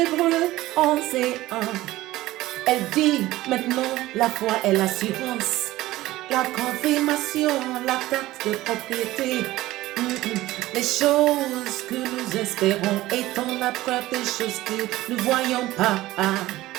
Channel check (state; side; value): quieter; left; 16.9 dB